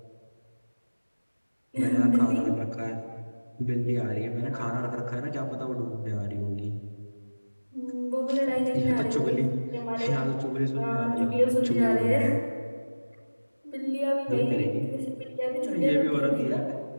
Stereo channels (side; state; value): both; inverted; correlation -1.00